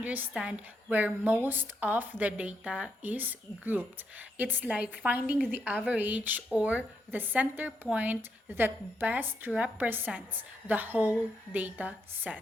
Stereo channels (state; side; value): normal; both; correlation 0.79